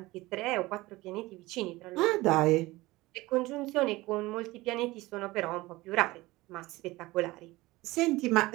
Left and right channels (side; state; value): left; quieter; 19.9 dB